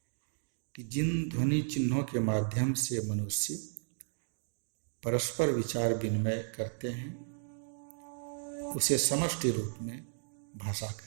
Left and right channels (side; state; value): left; silent; digital silence